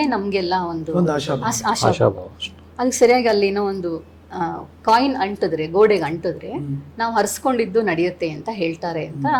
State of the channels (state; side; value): identical; both; correlation 1.00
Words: ನಮಗೆಲ್ಲ ಒಂದು ಆಶಾಭಾವ. ಅದಕ್ಕೆ ಸರಿಯಾಗಿ ಅಲ್ಲಿ ಏನೋ ಒಂದು ಕಾಯಿನ್ ಅಂಟಿದ್ರೆ, ಗೋಡೆಗೆ ಅಂಟಿದ್ರೆ ನಾವು ಹರಿಸ್ಕೊಂಡಿದ್ದು ನಡೆಯುತ್ತೆ ಅಂತ ಹೇಳ್ತಾರೆ ಅಂತ